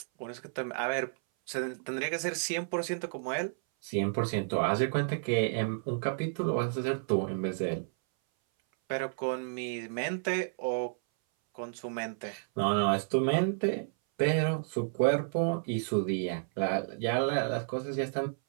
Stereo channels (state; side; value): silent; left; 57 dB below the other